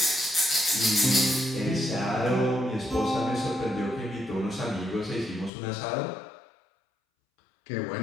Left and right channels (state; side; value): drops out; right; at 5.5 s